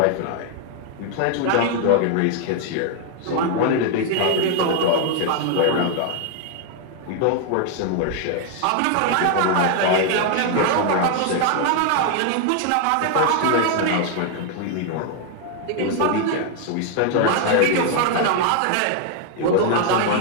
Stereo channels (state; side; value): different; both; correlation 0.00